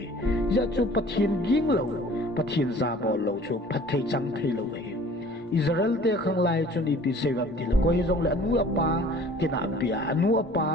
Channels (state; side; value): normal; both; correlation 0.49